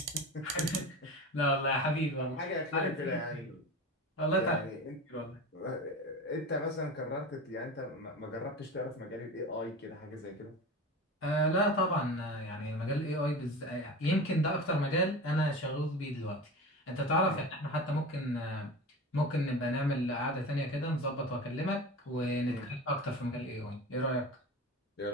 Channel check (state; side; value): normal; both; correlation 0.30